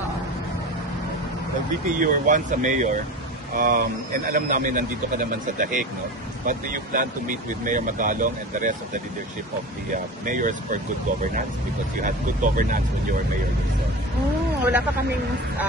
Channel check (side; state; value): both; normal; correlation 0.31